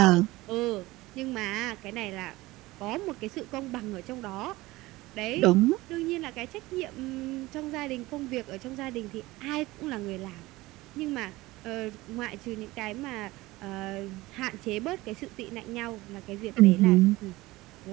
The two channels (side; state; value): left; quieter; 19.5 dB